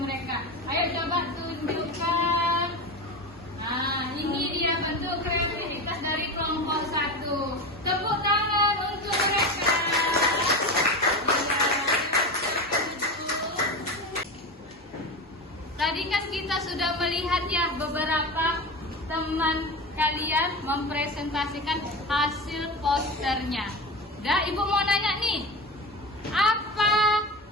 mereka. Ayo coba tunjukkan. Nah, ini dia bentuk kreativitas dari kelompok 1. Tepuk tangan untuk mereka. Tadi kan kita sudah melihat ya beberapa teman kalian mempresentasikan hasil posternya. Dah, ibu mau nanya nih, apa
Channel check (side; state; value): both; normal; correlation 0.24